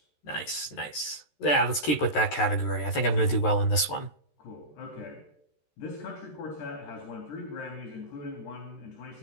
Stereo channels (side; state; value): right; late; 13 ms